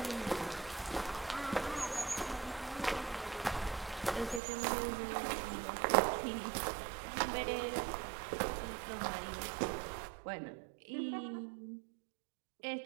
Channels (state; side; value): drops out; left; at 4.4 s